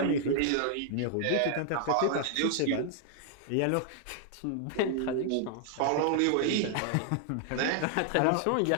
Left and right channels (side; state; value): both; different; correlation 0.00